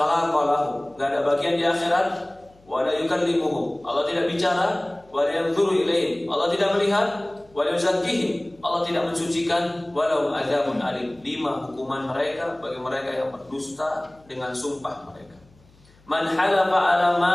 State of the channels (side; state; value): left; noise; hum, 29 dB below the sound